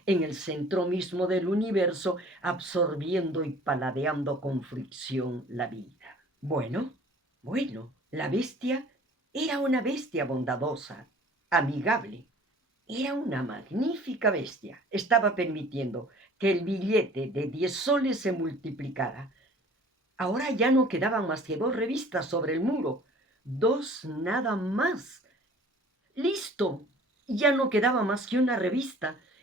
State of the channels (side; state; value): both; normal; correlation 0.49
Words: en el centro mismo del universo, absorbiendo y paladeando con fricción la vida. Bueno, la bestia era una bestia bondadosa, amigable. Era una magnífica bestia. Estaba permitiendo que el billete de 10 soles se multiplicara. Ahora ya no quedaban más que 2 revistas sobre el muro. 2 nada más. ¡Listo! Ya no quedaba más que una revista